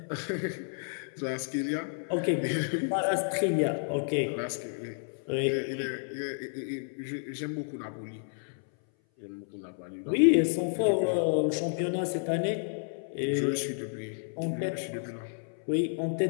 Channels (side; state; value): right; silent; 57 dB below the other